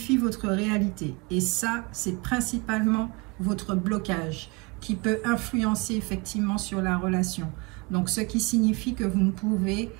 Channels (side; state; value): left; quieter; 27.4 dB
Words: votre réalité. Et ça, c'est principalement votre blocage qui peut influencer effectivement sur la relation. Donc, ce qui signifie que vous ne pouvez